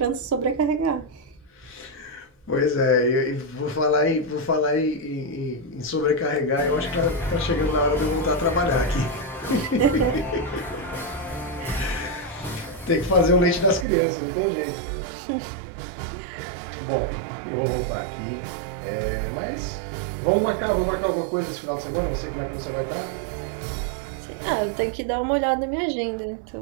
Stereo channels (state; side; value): drops out; left; at 13.9 s